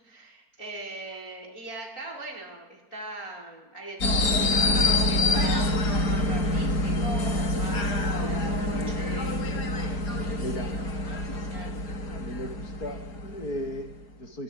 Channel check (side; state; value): right; late; 4.4 ms